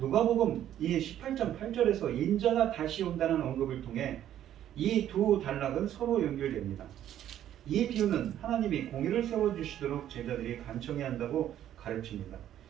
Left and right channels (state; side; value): quieter; left; 11.4 dB